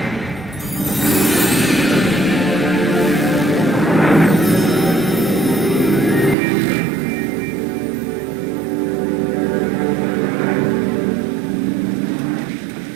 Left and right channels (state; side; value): drops out; left; at 6.4 s